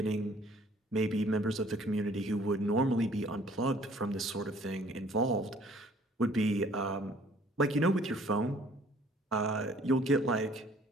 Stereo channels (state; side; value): normal; both; correlation 0.56